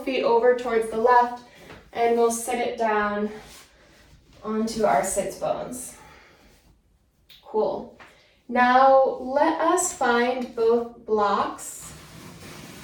feet over towards the left, and we'll sit it down onto our sits bones. Cool. Now let us find both blocks.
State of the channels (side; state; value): both; identical; correlation 1.00